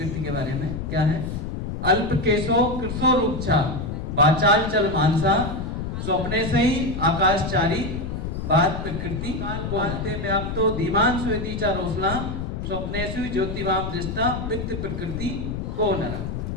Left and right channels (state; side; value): noise; left; rumble, 5 dB below the sound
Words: के बारे में क्या है। अल्प केशो कृशो रूपछा बाचाल चल मानसा स्वप्ने से ही आकाशचारी बात प्रकृति को आते व्याप्तो धीमान स्वेदी चा रोसना स्वप्नेषु ज्योतिवाम दृष्टा वित्त प्रकृति को नरा।